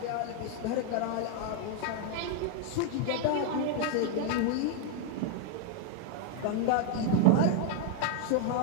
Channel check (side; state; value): both; different; correlation 0.00